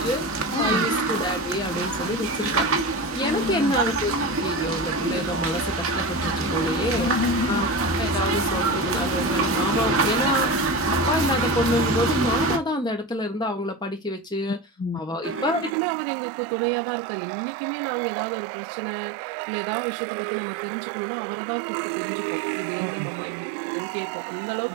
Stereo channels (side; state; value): left; drops out; at 15.8 s